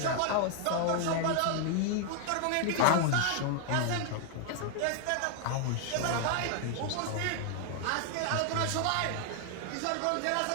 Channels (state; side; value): different; both; correlation 0.00